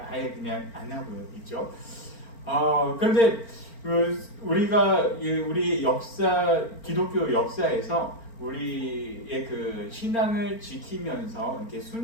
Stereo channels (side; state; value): right; late; 4.4 ms